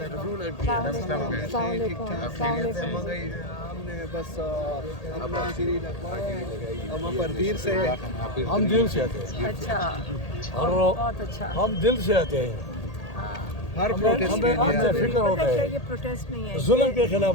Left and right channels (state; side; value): late; right; 1.8 ms